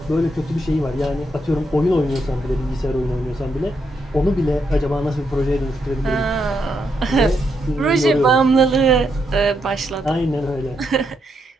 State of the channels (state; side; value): normal; both; correlation 0.79